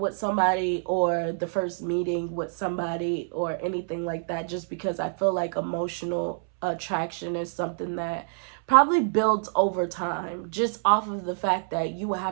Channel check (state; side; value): silent; left; 60 dB below the other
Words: somebody or the first meeting with somebody or anything like that, just because I feel like emotional attraction is something that probably builds over time, just off of the fact that you will